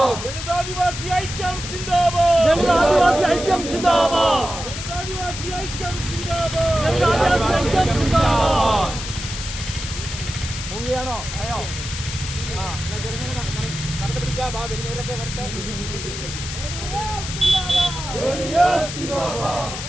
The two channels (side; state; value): left; noise; hiss, 8 dB below the sound